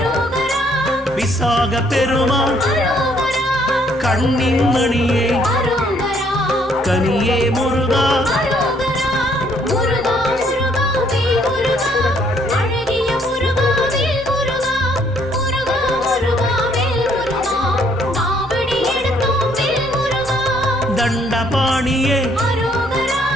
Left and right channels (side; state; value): both; normal; correlation 0.66